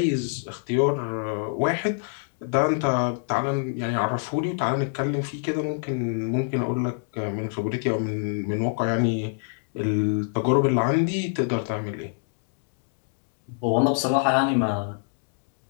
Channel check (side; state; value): right; silent; digital silence